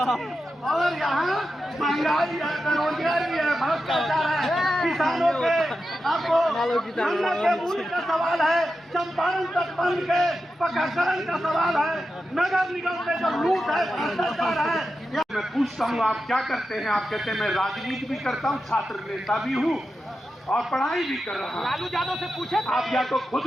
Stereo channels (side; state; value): both; normal; correlation 0.90